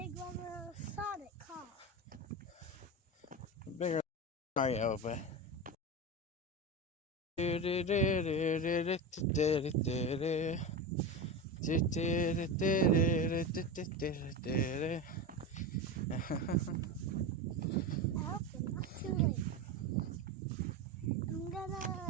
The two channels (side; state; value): both; normal; correlation 0.21